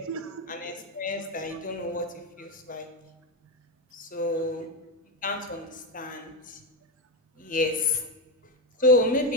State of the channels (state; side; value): normal; both; correlation 0.11